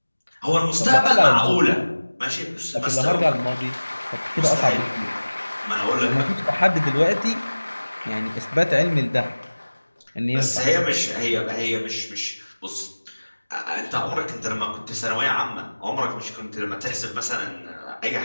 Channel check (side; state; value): both; inverted; correlation -1.00